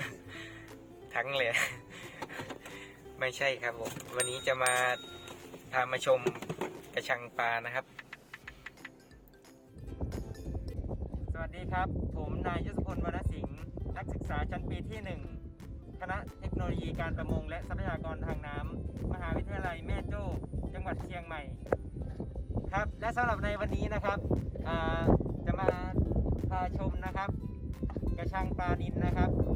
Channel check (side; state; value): both; identical; correlation 1.00